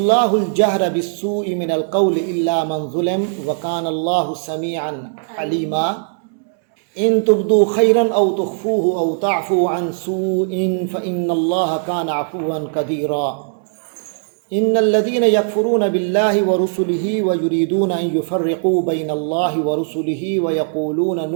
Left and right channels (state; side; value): silent; left; 67 dB below the other